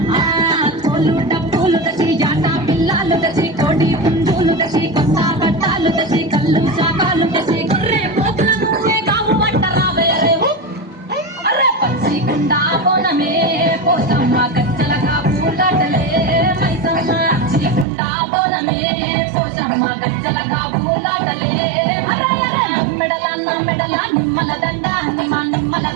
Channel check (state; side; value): drops out; left; at 17.9 s